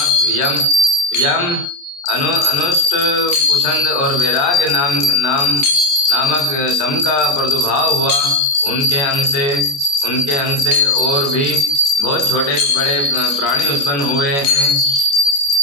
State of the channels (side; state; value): right; late; 28 ms